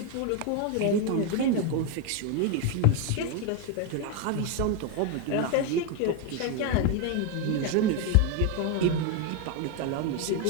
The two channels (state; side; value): different; both; correlation 0.02